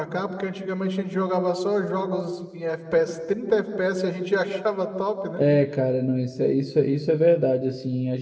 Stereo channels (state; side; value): identical; both; correlation 1.00